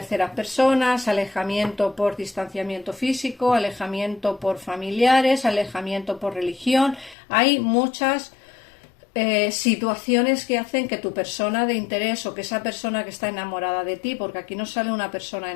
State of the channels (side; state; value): right; drops out; at 7.2 s